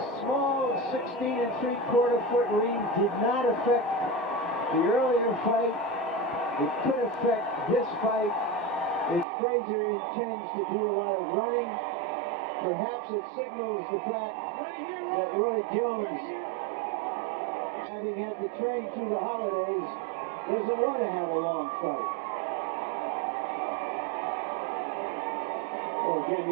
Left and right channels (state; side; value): drops out; left; at 9.2 s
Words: small 16 3/4 foot ring did not affect the earlier fight. It could affect this fight if FRAZIER intends to do a lot of running. Perhaps it signals the fact that Roy Jones, having had to train through the holidays, doesn't want to have a long fight. Well, again,